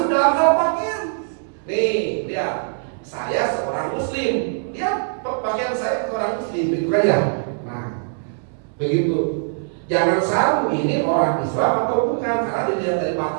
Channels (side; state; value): left; silent; 64 dB below the other